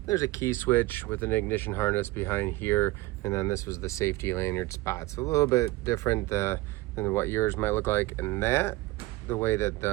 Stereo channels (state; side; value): quieter; left; 19.7 dB